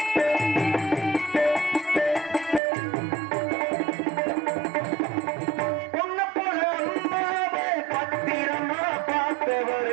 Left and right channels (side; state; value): left; drops out; at 2.6 s